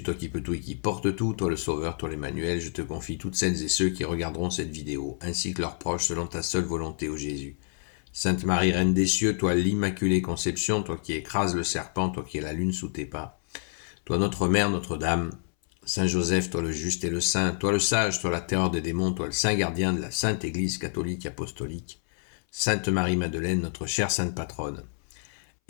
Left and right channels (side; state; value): right; silent; 59 dB below the other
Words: toi qui peux tout et qui porte tout, toi le Sauveur, toi l'Emmanuel, je te confie toutes celles et ceux qui regarderont cette vidéo, ainsi que leurs proches, selon ta seule volonté, ô Jésus. Sainte Marie, Reine des cieux, toi l'Immaculée Conception, toi qui écrases le serpent, toi qui es la lune sous tes pas, toi notre Mère, Notre-Dame, Saint Joseph, toi le juste et le saint, toi le sage, toi la terreur des démons, toi le saint gardien de la Sainte Église catholique apostolique, Sainte Marie-Madeleine, notre chère Sainte Patronne.